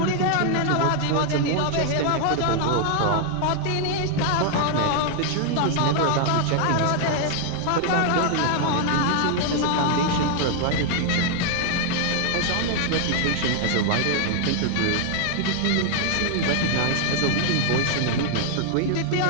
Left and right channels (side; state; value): both; different; correlation 0.00